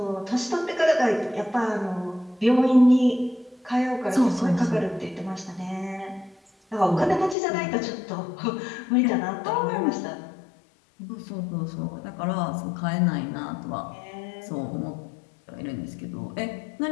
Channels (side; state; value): right; drops out; at 7.4 s